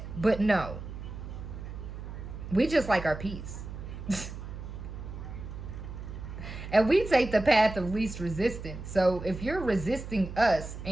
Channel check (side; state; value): right; noise; hum, 10 dB below the sound